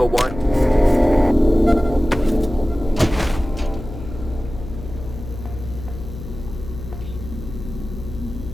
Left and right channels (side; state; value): left; noise; hum, 11 dB below the sound